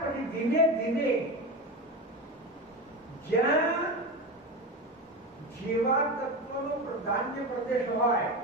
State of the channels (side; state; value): both; normal; correlation 0.22